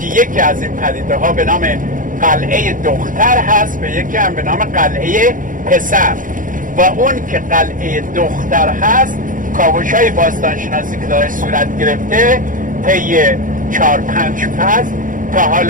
یکی از این پدیده ها به نام قلعه دختر هست و یکی هم به نام قلعه پسر. و اون که قلعه دختر هست، کاوش های باستانشناسی که داره صورت گرفته طی 4-5 فصل تا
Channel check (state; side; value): late; left; 0.39 ms